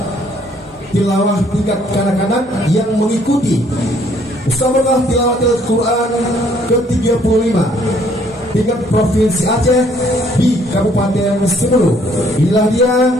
tilawah tingkat kanak-kanak yang mengikuti Musabaqah Tilawatil Quran ke-35 tingkat Provinsi Aceh di Kabupaten Semeru. Inilah dia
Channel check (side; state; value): both; normal; correlation 0.64